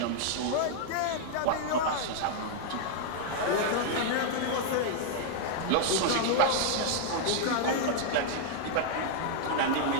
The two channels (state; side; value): different; both; correlation -0.01